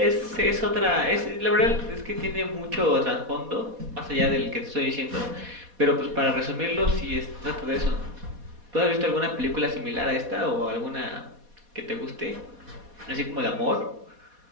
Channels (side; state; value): left; late; 4.2 ms